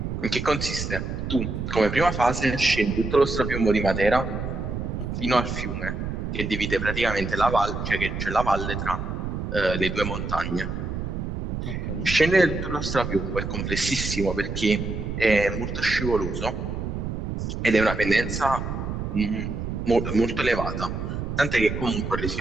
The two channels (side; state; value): right; noise; rumble, 4 dB below the sound